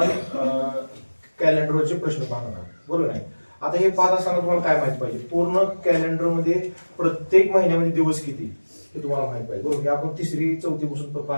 कॅलेंडरचे प्रश्न पाहणार आहोत, बरोबर आहे. आता हे पाहत असताना तुम्हाला काय माहित पाहिजे, पूर्ण कॅलेंडर मध्ये प्रत्येक महिन्यामध्ये दिवस किती हे तुम्हाला माहित पाहिजे, बरोबर. आपण तिसरी चौथी पासून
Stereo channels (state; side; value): inverted; both; correlation -1.00